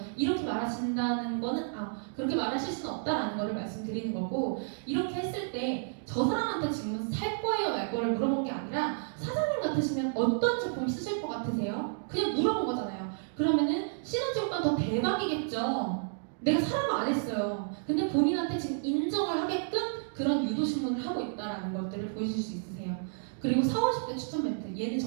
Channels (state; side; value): silent; left; digital silence